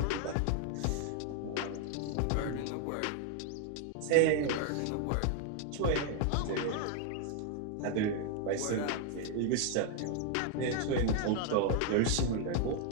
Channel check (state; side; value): different; both; correlation 0.00